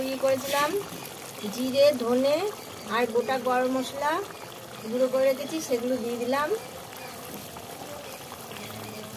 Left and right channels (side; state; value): both; identical; correlation 1.00